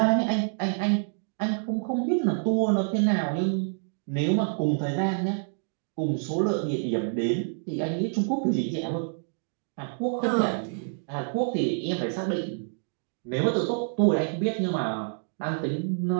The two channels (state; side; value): silent; left; digital silence